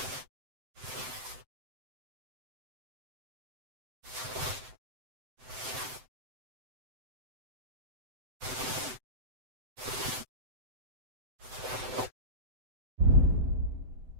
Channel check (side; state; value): left; late; 7.8 ms